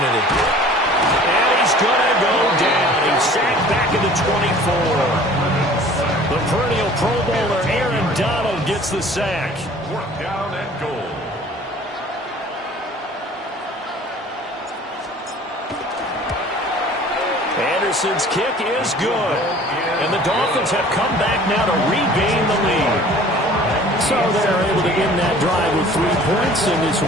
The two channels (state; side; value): normal; both; correlation 0.48